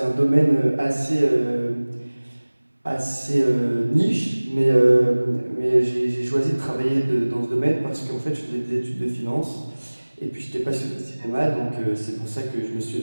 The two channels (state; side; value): inverted; both; correlation -1.00